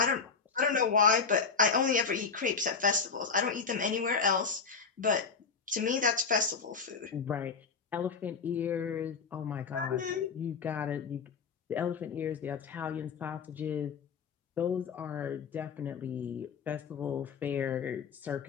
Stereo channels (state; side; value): quieter; right; 5.4 dB